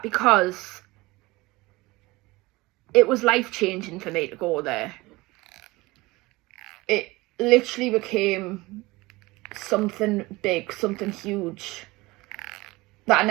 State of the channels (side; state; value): left; quieter; 21.4 dB